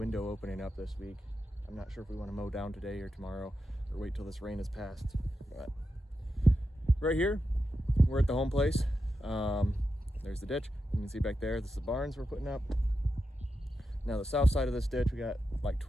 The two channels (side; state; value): both; normal; correlation 0.89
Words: opening up this week. I'm not sure if we want to mow down today or tomorrow, or wait till this rain is passed. But right here, we're at the home place. There's the ditch. You can see back there, this is the barns we're putting up. Now the south side of this ditch, we got like